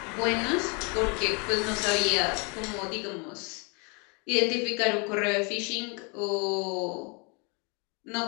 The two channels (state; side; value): quieter; right; 32.4 dB